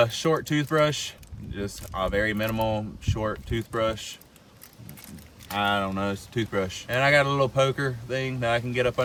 short toothbrush, just a very minimal short toothbrush. I don't know, it's a toothbrush. And I got a little poker thing that I can get up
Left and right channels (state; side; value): identical; both; correlation 1.00